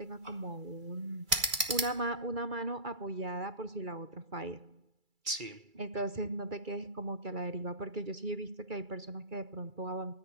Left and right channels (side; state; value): left; late; 2.3 ms